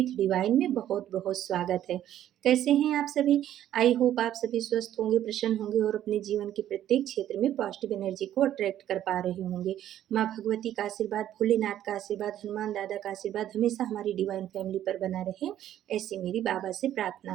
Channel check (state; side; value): quieter; left; 11.7 dB